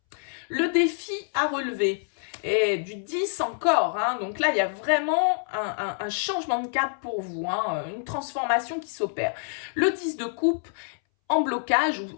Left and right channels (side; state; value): right; silent; 60 dB below the other